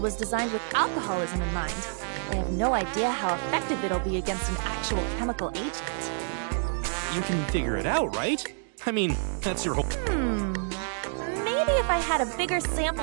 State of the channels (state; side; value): silent; left; digital silence